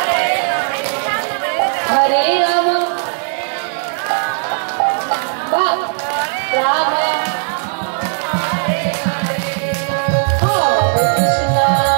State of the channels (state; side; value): silent; left; digital silence